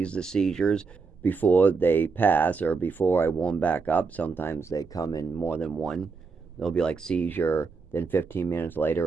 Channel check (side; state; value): left; quieter; 4.8 dB